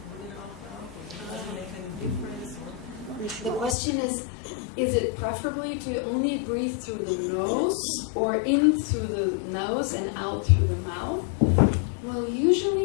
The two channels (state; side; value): drops out; right; at 3.8 s